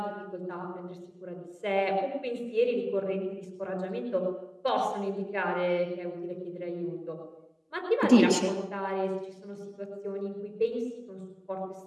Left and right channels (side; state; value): both; identical; correlation 1.00